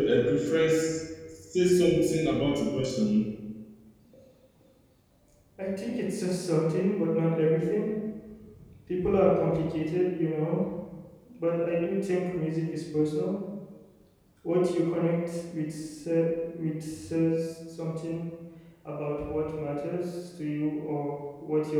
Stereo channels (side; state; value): both; identical; correlation 1.00